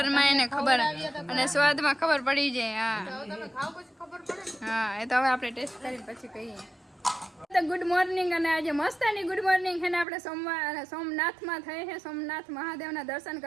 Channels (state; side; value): drops out; left; at 10.1 s